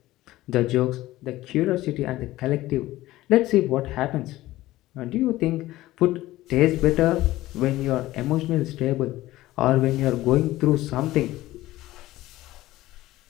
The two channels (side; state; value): right; quieter; 16.6 dB